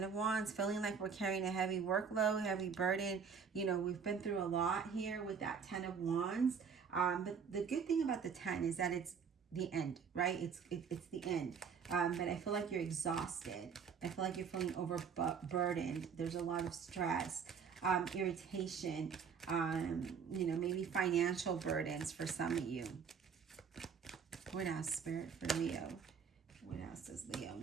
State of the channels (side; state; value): left; quieter; 6.4 dB